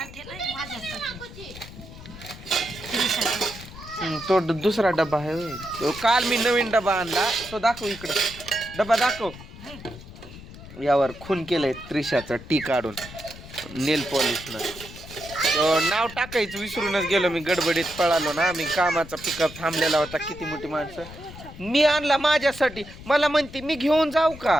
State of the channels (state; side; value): noise; left; rumble, 16 dB below the sound